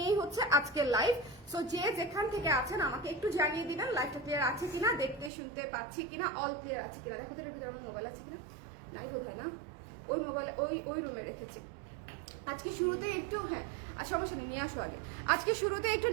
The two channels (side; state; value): left; drops out; at 5.3 s